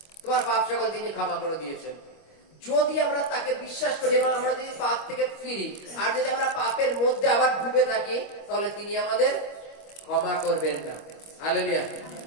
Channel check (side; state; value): right; late; 25 ms